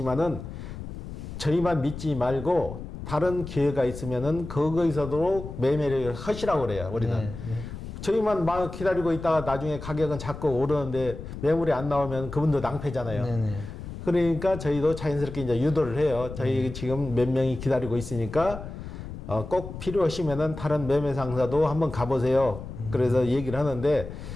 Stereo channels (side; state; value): left; noise; rumble, 10 dB below the sound